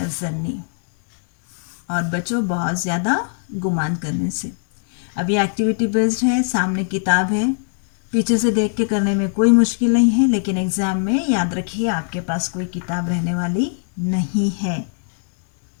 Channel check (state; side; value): silent; right; 66 dB below the other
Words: और बचो बहुत ज़्यादा गुमान करने से। अब ये एक्टिविटी बेस्ड है, सामने किताब है, पीछे से देख के करने में कोई मुश्किल नहीं है, लेकिन एग्ज़ाम में याद रखिए आपके पास कोई किताब रहने वाली नहीं है,